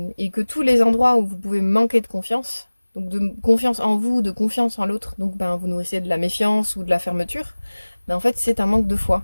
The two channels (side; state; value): both; inverted; correlation -1.00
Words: et que tous les endroits où vous pouvez manquer de confiance, donc de confiance en vous, de confiance en l'autre, donc vous nourrissez de la méfiance ou de la fermeture, en fait c'est un manque de foi